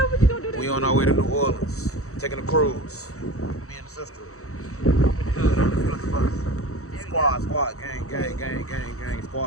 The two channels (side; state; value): right; late; 0.65 ms